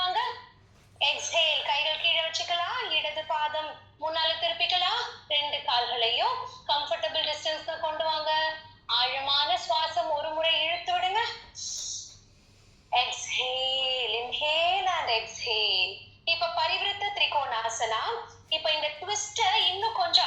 exhale, கைகள் கீழே வச்சுக்கலாம். இடது பாதம் முன்னால திருப்பிக்கலாம். ரெண்டு கால்களையும் கம்ஃபர்டபிள் டிஸ்டன்ஸ்ல கொண்டு வாங்க. ஆழமான சுவாசம் ஒரு முறை இழுத்து விடுங்க. exhale, inhale and exhale. இப்ப பரிவிருத்த திரிகோணாசனா. இப்ப இந்த ட்விஸ்ட இன்னும்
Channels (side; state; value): both; identical; correlation 1.00